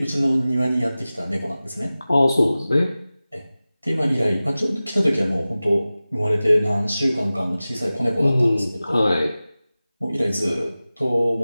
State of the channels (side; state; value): both; inverted; correlation -0.97